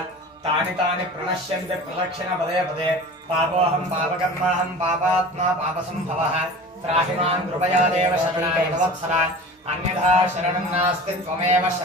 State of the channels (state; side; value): normal; both; correlation 0.38